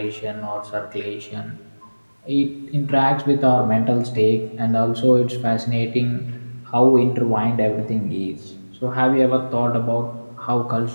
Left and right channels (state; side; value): inverted; both; correlation -1.00